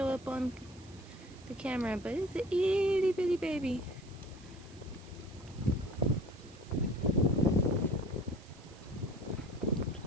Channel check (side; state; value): right; noise; hiss, 23 dB below the sound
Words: up on the camera, but it's an itty bitty baby.